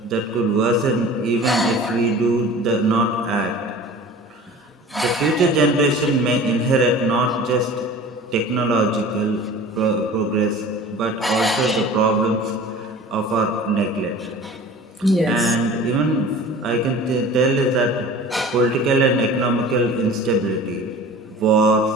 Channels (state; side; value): normal; both; correlation 0.41